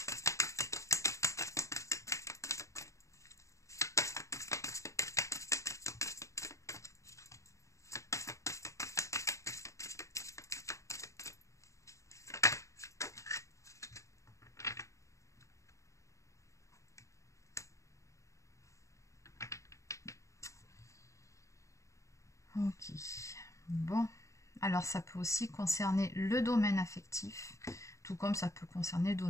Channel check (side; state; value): right; late; 0.15 ms